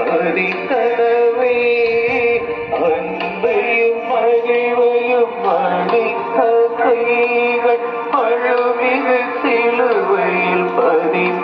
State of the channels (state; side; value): identical; both; correlation 1.00